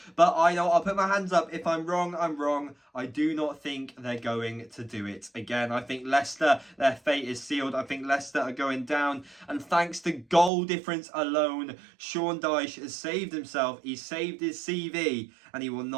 but I know I'll put my hands up. If I'm wrong, I'm wrong. I do not think they're going to do it again. I think Leicester, their fate is sealed. I think Leicester are going down. And thanks to goal difference alone, Sean Dyche has saved himself. He's saved his CV and he will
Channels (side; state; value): left; drops out; at 10.5 s